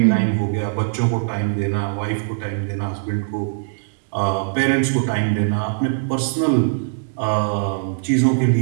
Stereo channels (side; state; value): left; silent; digital silence